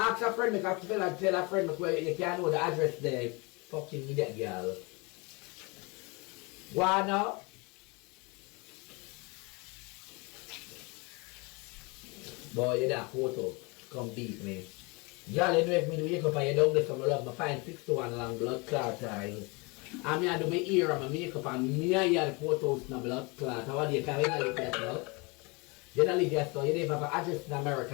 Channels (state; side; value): quieter; right; 28.4 dB